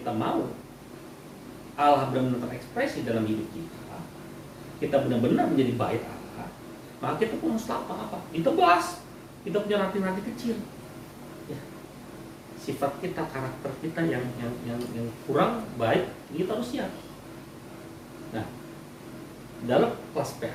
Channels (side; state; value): both; identical; correlation 1.00